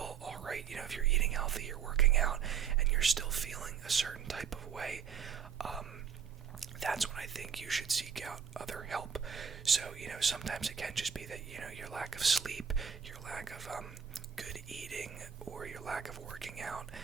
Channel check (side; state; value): left; quieter; 7.6 dB